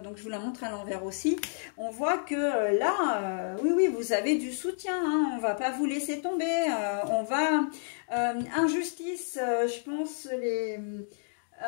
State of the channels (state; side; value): silent; right; digital silence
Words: donc je vous la montre à l'envers aussi. On voit que là, oui, vous avez du soutien, hein, on va pas vous laisser tomber, on va... injustice, je pense,